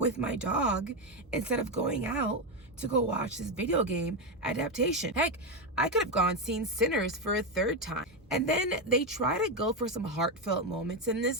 my dog instead of going out to go watch this video game adaptation. Heck, I could have gone seen Sinners for a third time. And then they try to go for some heartfelt moments in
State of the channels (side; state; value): both; normal; correlation 0.09